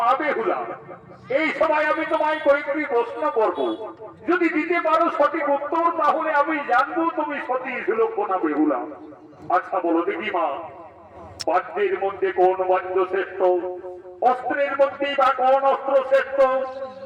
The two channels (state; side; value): identical; both; correlation 1.00